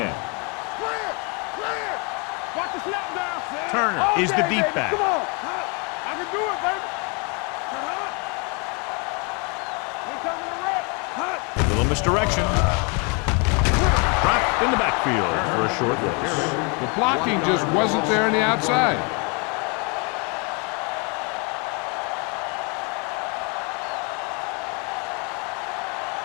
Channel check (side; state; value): right; quieter; 33.2 dB